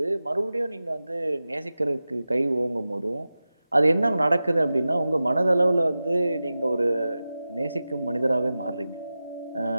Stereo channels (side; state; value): both; inverted; correlation -0.94